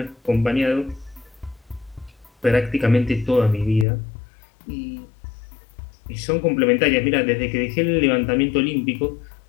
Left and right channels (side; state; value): right; drops out; at 3.9 s